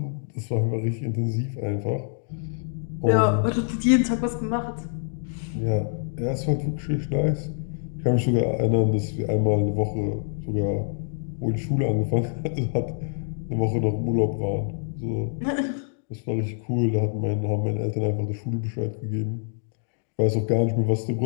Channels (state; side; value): silent; right; digital silence